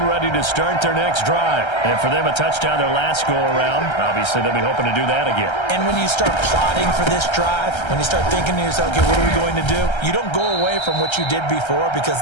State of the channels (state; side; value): late; right; 1.3 ms